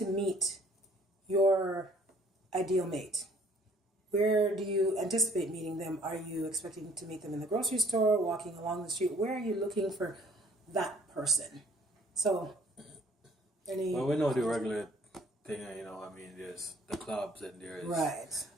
meet your ideal mate. Where do you anticipate meeting them? Are you expecting to meet them in the grocery store, walking along the street? Where are you looking for that person? So, Well, we know the regular thing, there's the clubs and there's right.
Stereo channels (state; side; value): normal; both; correlation 0.58